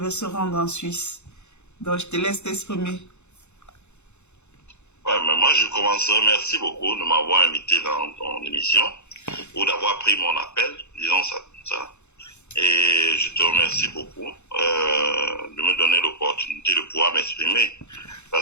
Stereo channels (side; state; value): right; late; 0.82 ms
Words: se rendre en Suisse. Donc, je te laisse t'exprimer. Ouais, mais moi, je commencerai. Merci beaucoup de m'avoir invité dans ton émission ou d'avoir pris mon appel, disons ça comme ça. Et je te remercie beaucoup de me donner l'opportunité de pouvoir m'exprimer.